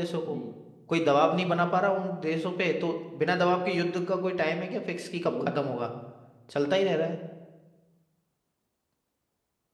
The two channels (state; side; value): identical; both; correlation 1.00